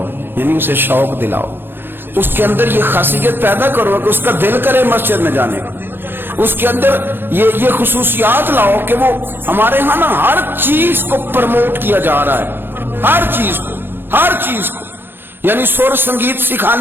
یعنی اسے شوق دلاؤ، اس کے اندر یہ خاصیت پیدا کرو کہ اس کا دل کرے مسجد میں جانے کا، اس کے اندر یہ خصوصیات لاؤ کہ وہ ہمارے ہاں نا ہر چیز کو پروموٹ کیا جا رہا ہے، ہر چیز کو یعنی سر سنگیت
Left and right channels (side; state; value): left; late; 0.10 ms